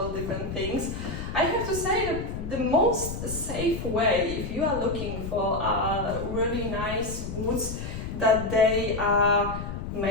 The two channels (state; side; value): noise; left; rumble, 7 dB below the sound